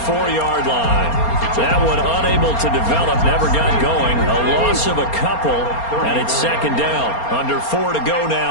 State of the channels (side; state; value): right; late; 4.3 ms